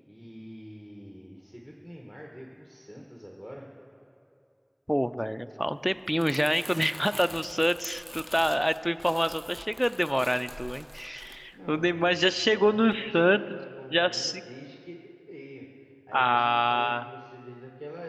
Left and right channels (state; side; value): identical; both; correlation 1.00